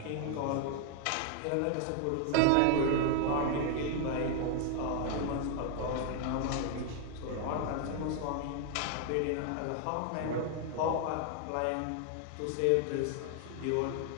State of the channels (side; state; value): both; different; correlation 0.00